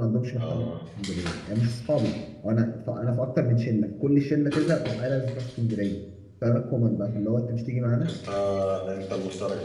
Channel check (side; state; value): both; identical; correlation 1.00